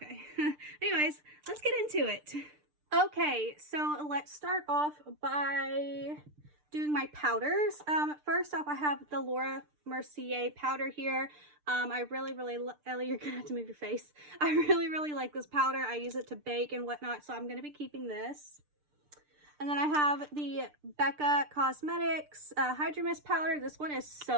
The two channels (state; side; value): late; left; 6.7 ms